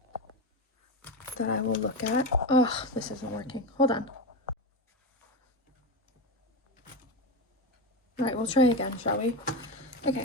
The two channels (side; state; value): both; normal; correlation 0.17